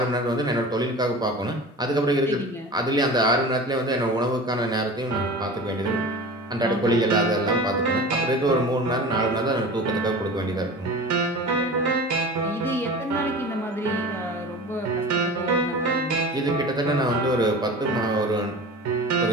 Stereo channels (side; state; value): both; normal; correlation 0.35